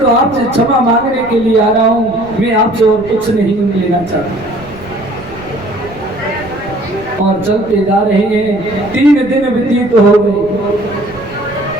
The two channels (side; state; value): right; noise; rumble, 19 dB below the sound